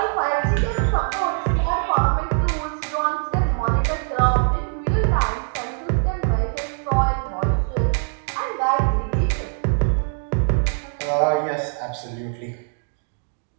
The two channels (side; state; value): left; silent; 64 dB below the other